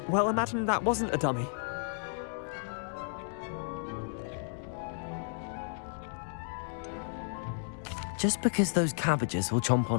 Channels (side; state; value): right; silent; digital silence